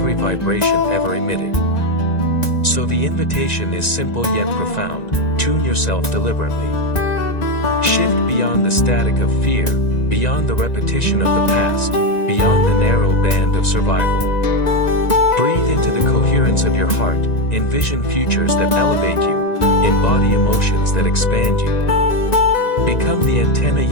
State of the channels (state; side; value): late; right; 1.9 ms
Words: vibration ever emitted. So the invitation is simple yet profound: tune yourself deliberately. Shift beyond the static of fear, beyond the repetition of the past, beyond the narrow band of survival. Breathe into the coherence of your heart, envision futures that elevate you, embody emotions that expand you. Become the antenna